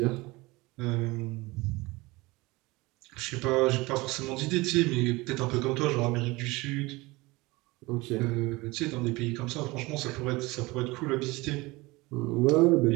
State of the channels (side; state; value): left; quieter; 22.4 dB